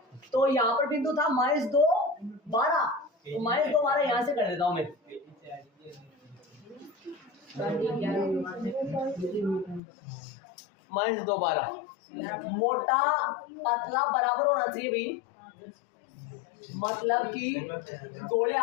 तो यहाँ पर बिंदु था -2 12, तो -2 12 यहाँ से कर देता हूँ मैं। -2 12 मोटा पतला बराबर होना चाहिए भाई, मतलब कि गोले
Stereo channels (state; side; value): drops out; right; at 9.8 s